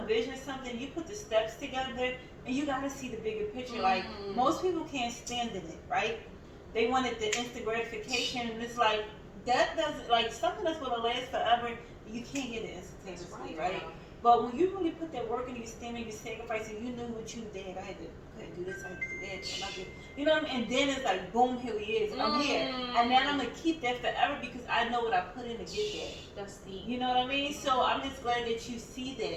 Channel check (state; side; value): identical; both; correlation 1.00